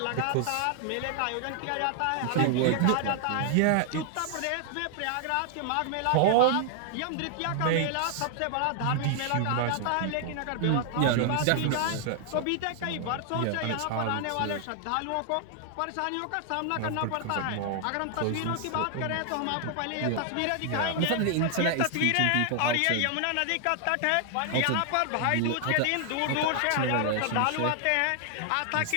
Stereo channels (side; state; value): both; different; correlation 0.00